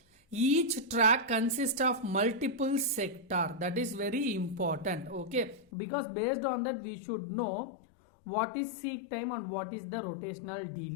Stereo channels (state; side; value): drops out; right; at 5.7 s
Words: Each track consists of multiple sector. That is very important. Okay, because based on that we should know what is seek time and what is the rotational